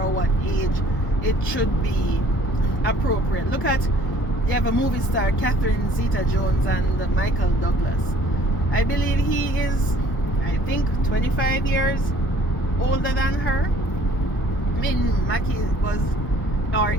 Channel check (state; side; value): late; right; 1.0 ms